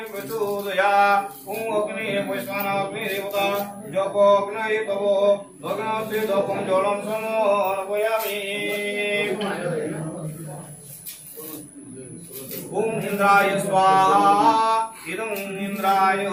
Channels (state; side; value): identical; both; correlation 1.00